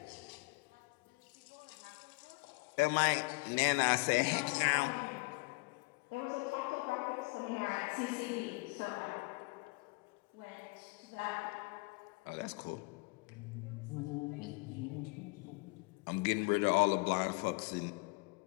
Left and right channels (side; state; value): right; quieter; 28.8 dB